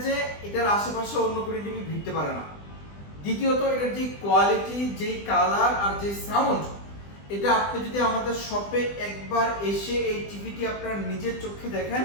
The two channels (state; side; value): late; right; 20 ms